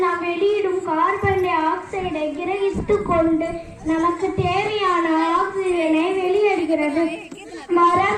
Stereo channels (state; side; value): identical; both; correlation 1.00